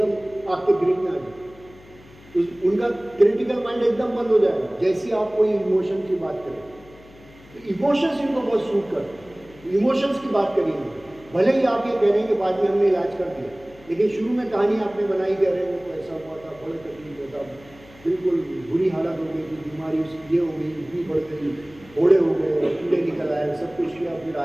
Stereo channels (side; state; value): left; noise; hum, 23 dB below the sound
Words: आपके ग्रिप में आ गया, तो उनका क्रिटिकल माइंड एकदम बंद हो जाएगा जैसे आप कोई इमोशन की बात करें। तो इमोशंस इनको बहुत सूट करते, इमोशंस की बात करिए। भले ही आप ये कह रहे हैं कि बाद में हमने इलाज कर दिया, लेकिन शुरू में कहानी आपने बनाई, कह रहे हो तो ऐसा हुआ था, बड़े तकलीफ होता, बिल्कुल बुरी हालत हो गई थी, बीमारी उसकी ये हो गई, इतनी बढ़ गई, फोड़े हो गए, कीड़े निकल आए, सब कुछ किया, फिर